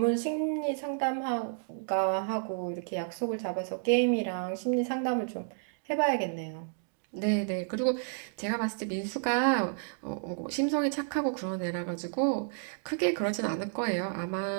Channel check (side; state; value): left; silent; digital silence